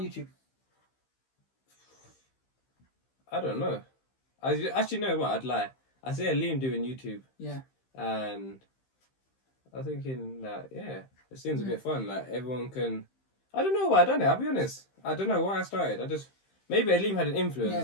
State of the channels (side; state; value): right; late; 15 ms